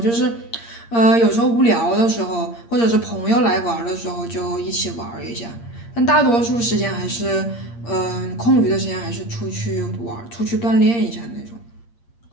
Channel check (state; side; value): late; right; 8.6 ms